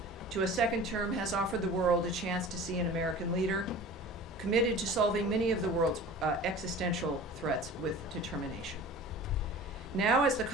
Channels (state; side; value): normal; both; correlation 0.40